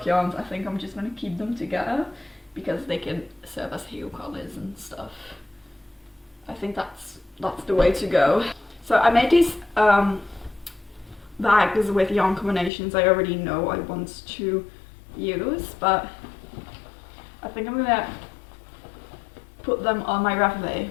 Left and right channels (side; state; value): right; drops out; at 12.7 s